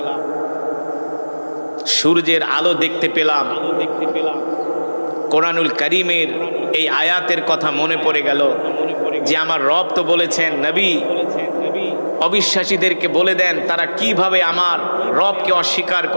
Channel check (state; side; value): inverted; both; correlation -1.00